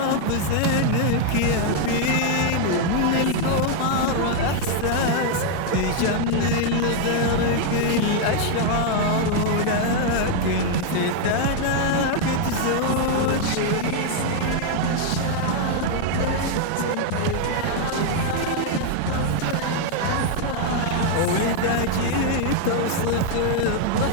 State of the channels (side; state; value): both; different; correlation 0.00